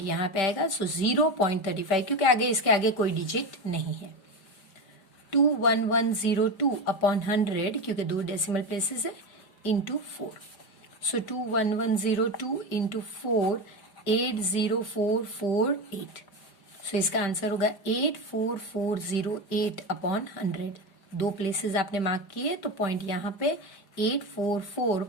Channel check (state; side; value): late; right; 5.2 ms